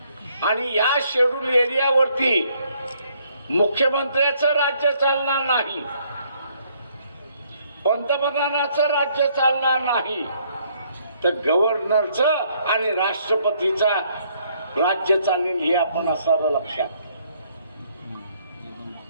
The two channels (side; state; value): both; inverted; correlation -0.67